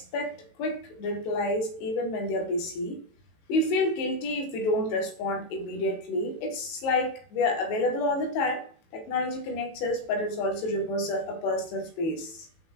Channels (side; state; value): right; late; 18 ms